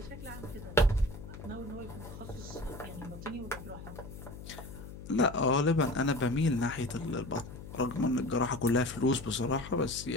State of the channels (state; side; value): noise; left; hum, 12 dB below the sound